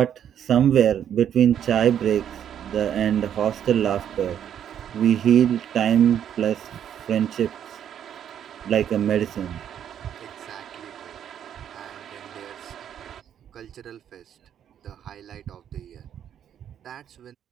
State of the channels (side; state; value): left; quieter; 9.5 dB